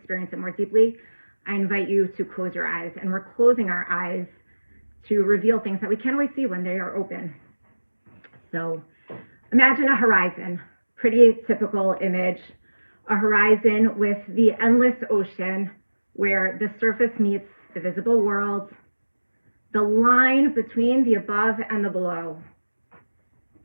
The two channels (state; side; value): inverted; both; correlation -1.00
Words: it more deeply, I invite you to close your eyes, and we're closing our eyes to reveal things that we can't always see when they are open. So imagine a horizon, pretty typical image, a horizon with the endless ocean where the surface meets the visible world, the line between the above and the below.